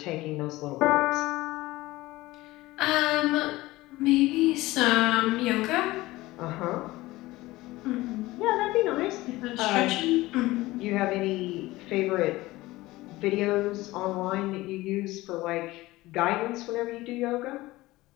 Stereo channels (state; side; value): quieter; right; 18.8 dB